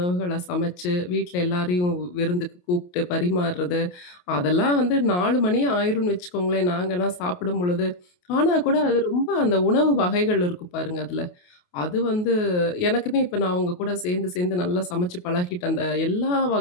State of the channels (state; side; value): late; right; 28 ms